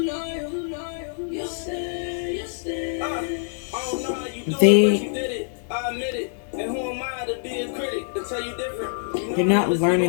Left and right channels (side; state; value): right; silent; digital silence